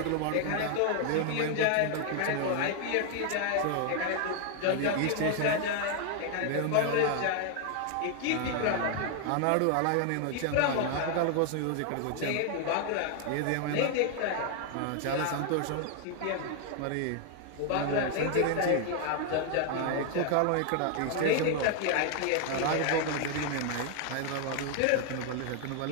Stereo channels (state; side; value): different; both; correlation 0.00